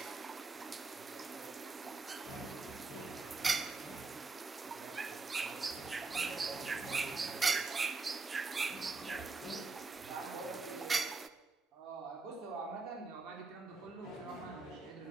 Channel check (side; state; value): left; quieter; 3.9 dB